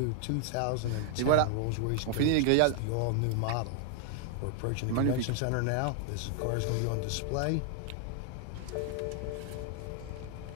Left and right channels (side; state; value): both; different; correlation 0.00